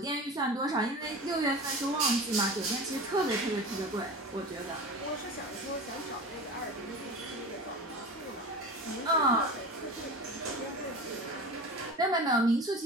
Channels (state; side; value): normal; both; correlation 0.32